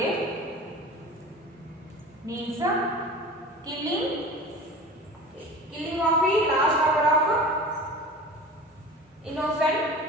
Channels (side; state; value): both; normal; correlation 0.37